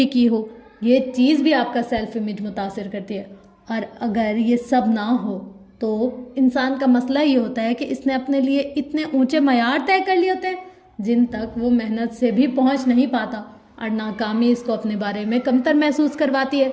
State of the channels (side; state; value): both; identical; correlation 1.00